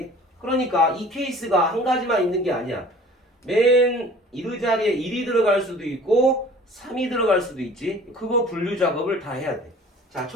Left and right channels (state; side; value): normal; both; correlation 0.48